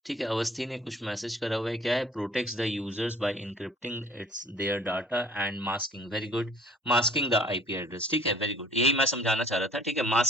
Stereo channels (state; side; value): normal; both; correlation 0.51